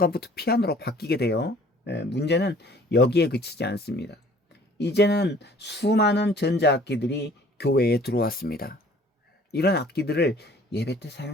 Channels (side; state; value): both; normal; correlation 0.53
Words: 피아노로 바뀌게 돼요. 문제는 여기에 그치지 않습니다. 이제는 수많은 전자악기들이 교회에 들어왔습니다. 이런 악기들을 예배 때